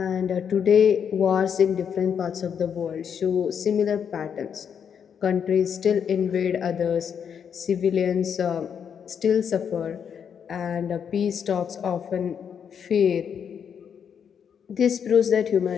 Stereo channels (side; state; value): right; quieter; 7.6 dB